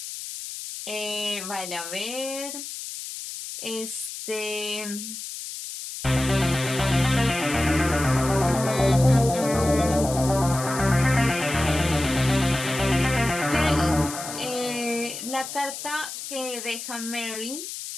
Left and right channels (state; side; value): noise; left; hiss, 9 dB below the sound